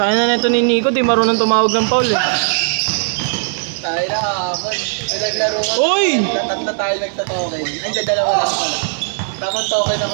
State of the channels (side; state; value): left; silent; 62 dB below the other